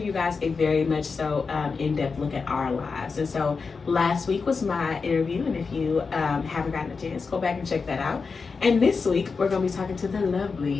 you guys a very much so in-depth look at our lives. And so last week was my interview, and if you haven't gotten a chance, go back and check that out. And this week we're going to be talking to the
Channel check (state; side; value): quieter; right; 4.8 dB